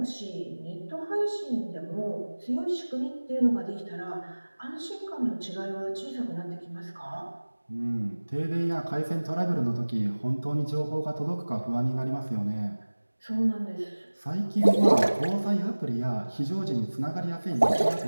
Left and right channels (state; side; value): inverted; both; correlation -1.00